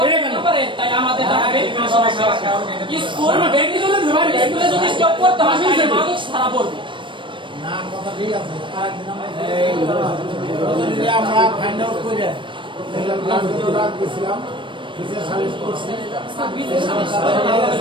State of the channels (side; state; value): left; late; 0.24 ms